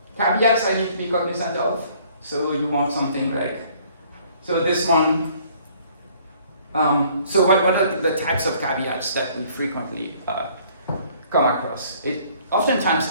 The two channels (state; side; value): inverted; both; correlation -0.59